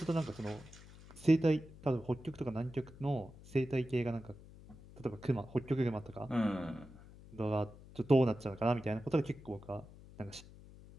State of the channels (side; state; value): left; noise; hum, 19 dB below the sound